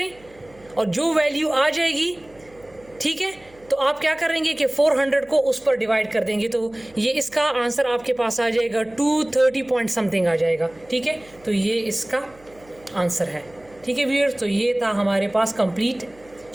और जो वैल्यू आ जाएगी, ठीक है, तो आप क्या करेंगे कि 400 को उस पर डिवाइड कर देंगे, तो ये इसका आंसर आपके पास आ जाएगा 230 पॉइंट समथिंग आ जाएगा, ठीक है। तो ये इसका आंसर है, ठीक है व्यूअर्स। तो ये था हमारे पास कंप्लीट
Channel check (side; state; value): right; noise; hum, 27 dB below the sound